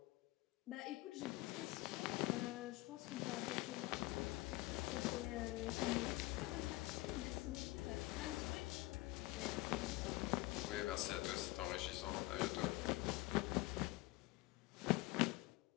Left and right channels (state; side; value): quieter; right; 20.4 dB